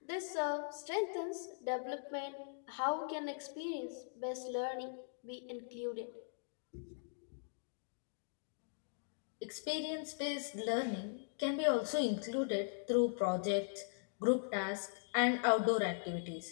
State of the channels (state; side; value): silent; right; digital silence